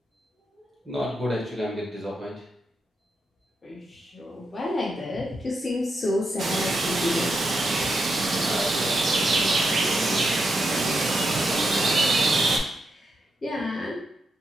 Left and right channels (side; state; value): both; normal; correlation 0.84